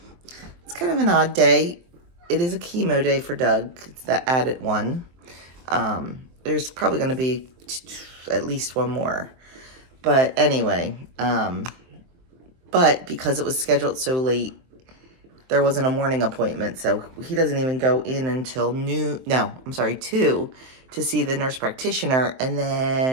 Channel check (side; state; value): left; late; 23 ms